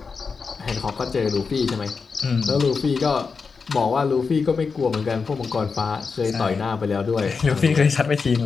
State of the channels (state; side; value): quieter; right; 5.0 dB